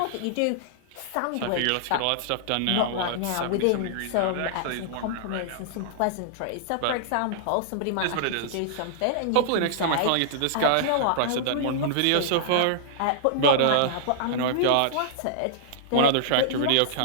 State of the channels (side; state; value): both; different; correlation -0.01